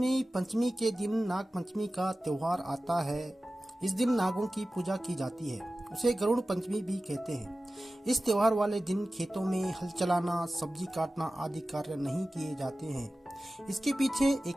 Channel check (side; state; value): both; normal; correlation 0.96